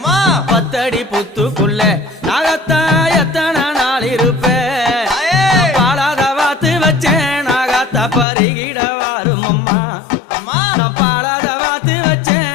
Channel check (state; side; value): drops out; right; at 8.2 s